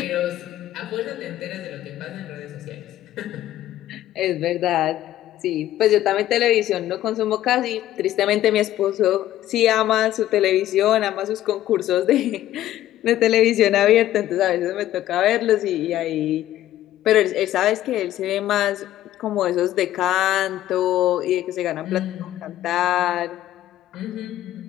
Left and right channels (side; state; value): right; quieter; 13.5 dB